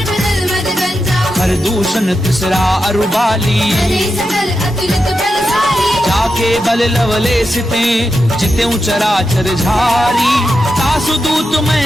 मद गंजा हर दूषण तिसरा अरुबाली हरे सकल अतुलित बलशाली जाके बल लवले सिते जितेऊ चराचर झारी तासु दूत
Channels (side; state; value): both; normal; correlation 0.88